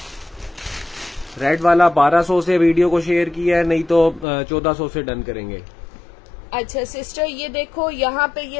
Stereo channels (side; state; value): right; drops out; at 4.2 s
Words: रेड वाला 1200 से वीडियो को शेयर किया है, नहीं तो 1400 से डन करेंगे। अच्छा सिस्टर, ये देखो यहाँ पे